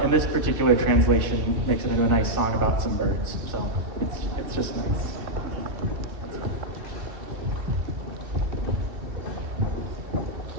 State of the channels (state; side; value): late; left; 2.7 ms